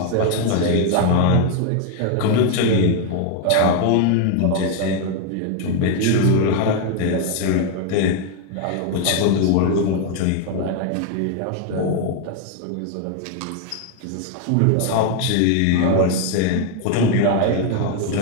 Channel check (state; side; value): different; both; correlation 0.00